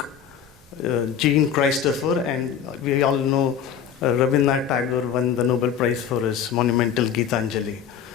Jean Christopher, and we all know Rabindranath Tagore won the Nobel Prize for his monumental Gitanjali.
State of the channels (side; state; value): right; quieter; 8.3 dB